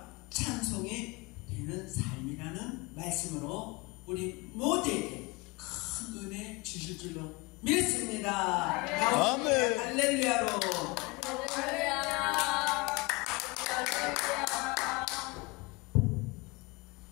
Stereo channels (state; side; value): quieter; right; 25.5 dB